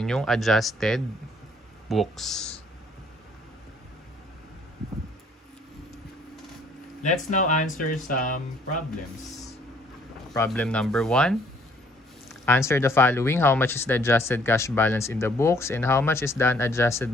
yung adjusted books. Let's now answer some problems. Problem number 1. Answer the following. How much is the adjusted cash balance in the books and how much is the unadjusted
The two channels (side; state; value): both; normal; correlation 0.62